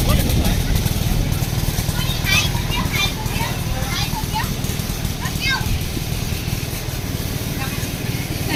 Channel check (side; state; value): both; identical; correlation 1.00